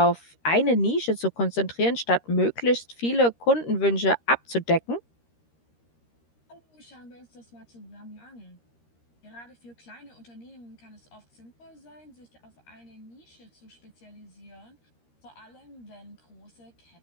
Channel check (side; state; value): right; late; 13 ms